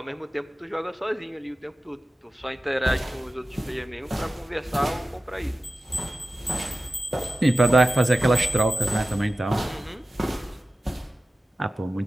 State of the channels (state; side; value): normal; both; correlation 0.95